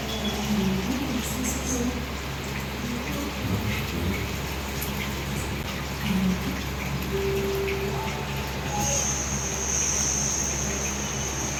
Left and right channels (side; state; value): both; identical; correlation 1.00